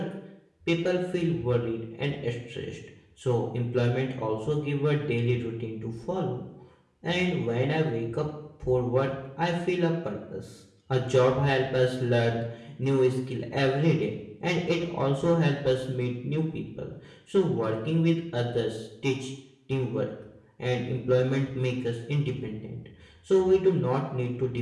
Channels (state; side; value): identical; both; correlation 1.00